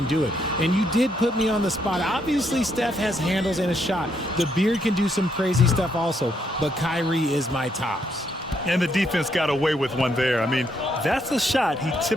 do it. And you did put me on the spot. Obviously, Steph has handles and a shot. The Beard can do some crazy stuff also, but Kyrie is my tops. And the defense got away with one there. I mean, that's a shot he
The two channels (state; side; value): normal; both; correlation 0.75